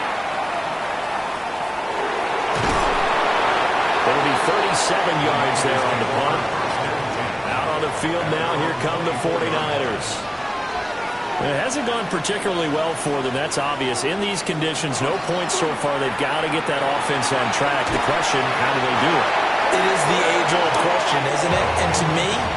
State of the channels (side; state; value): both; identical; correlation 1.00